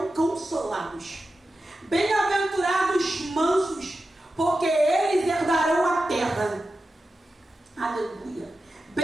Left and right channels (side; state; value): both; normal; correlation 0.92